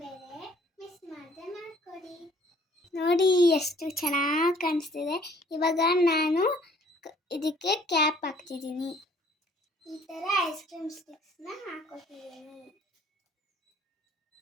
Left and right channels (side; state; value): both; normal; correlation 0.57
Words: ಬೇರೆ, ಮಿಸ್ ಮಾಡದೆ ಮಾಡ್ಕೊಡಿ. ನೋಡಿ ಎಷ್ಟು ಚೆನ್ನಾಗಿ ಕಾಣಿಸ್ತಿದೆ. ಇವಾಗ ನಾನು ಇದಕ್ಕೆ ಕ್ಯಾಪ್ ಹಾಕ್ತಿದ್ದೀನಿ. ಈ ಥರ ಐಸ್ ಕ್ರೀಮ್ ಸ್ಟಿಕ್ಸ್ನ ಹಾಕೋತಿದ್ದೀನಿ.